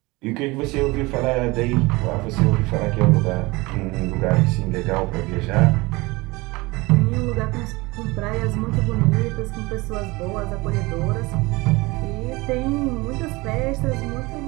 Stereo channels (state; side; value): quieter; left; 23.2 dB